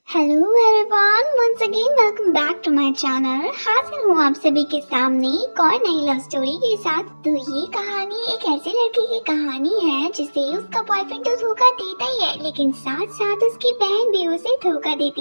Hello everyone, once again welcome back to my channel. हाजिर हूँ आप सभी के सामने एक और नई लव स्टोरी के साथ। तो ये कहानी एक ऐसे लड़के की कहानी है जिसे उसका बॉयफ्रेंड तो धोखा देता ही है, लेकिन साथ साथ उसकी बहन भी उसे धोखा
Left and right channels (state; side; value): inverted; both; correlation -1.00